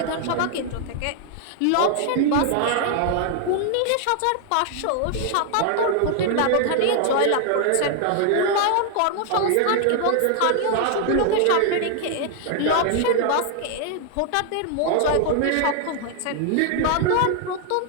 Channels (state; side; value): different; both; correlation 0.00